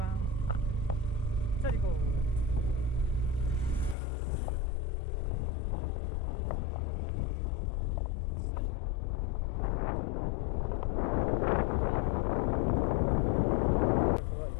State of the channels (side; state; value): right; drops out; at 4.0 s